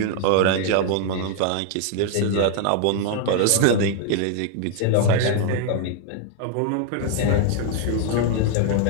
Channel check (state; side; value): different; both; correlation 0.00